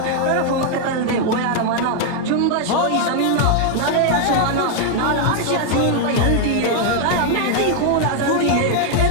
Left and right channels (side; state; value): both; different; correlation 0.00